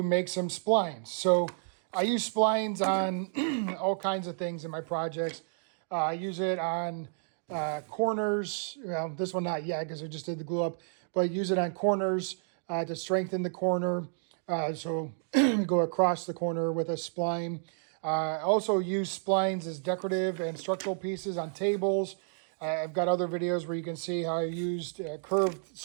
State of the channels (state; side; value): silent; left; digital silence